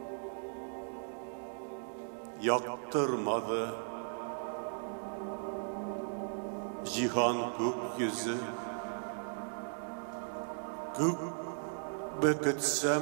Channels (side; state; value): left; silent; digital silence